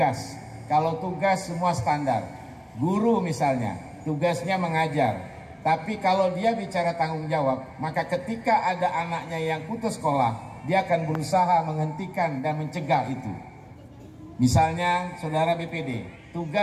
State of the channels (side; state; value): both; identical; correlation 1.00